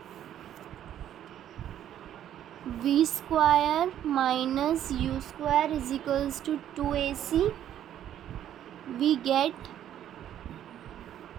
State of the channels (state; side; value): quieter; left; 10.9 dB